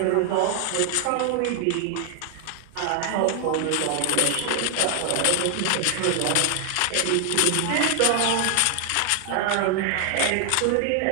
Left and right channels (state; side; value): different; both; correlation 0.00